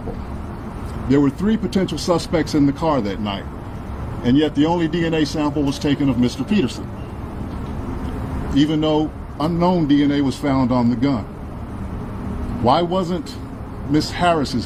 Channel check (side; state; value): both; identical; correlation 1.00